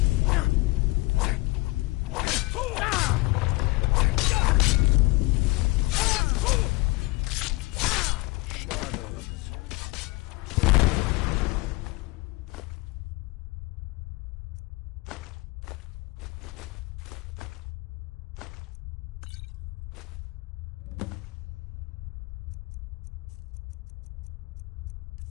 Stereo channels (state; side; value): quieter; right; 22.8 dB